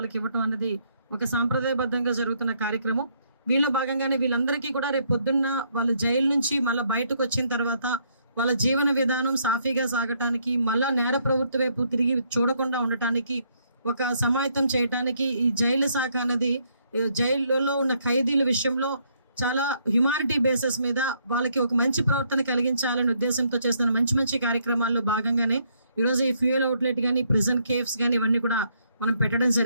ఇవ్వటం అనేది ఒక సాంప్రదాయబద్ధంగా జరుగుతున్న కార్యక్రమం. వీళ్ళ భాగంగానే వీళ్ళందరికీ కూడా రేపు పొద్దున్న వాళ్ళ జైలు నుంచి మళ్ళీ బయటకు వచ్చిన తర్వాత వాళ్ళ జీవన విధానం సాఫీగా సాగటానికి, మళ్ళా నేర ప్రవృత్తి వైపు తిరిగి చూడకుండా ఉండటానికి, ఒక సమాయత్తం చేయటానికి ఈ జైలు శాఖ అనేది జైలులో ఉన్న ఖైదీల విషయంలో చాలా హ్యుమానిటీ బేసిస్ మీద వాళ్ళకి ఒక మంచి ప్రవర్తన కలిగించాలనే ఉద్దేశంతో చేస్తున్న మంచి మంచి కార్యక్రమాల్లో భాగంగానే ఈరోజు ఈ ఫ్యూయల్ అవుట్లెట్ కానీ, ప్రిజన్ కేఫ్స్ కానీ ఇవన్నీ కూడా మనం పెట్టడం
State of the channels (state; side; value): inverted; both; correlation -0.71